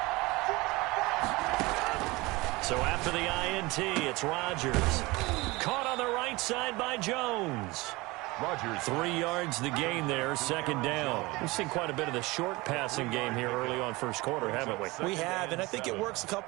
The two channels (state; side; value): quieter; left; 22.5 dB